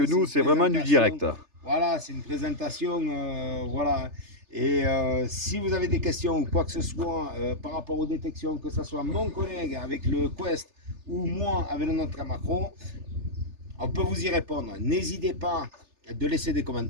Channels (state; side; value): late; left; 3.3 ms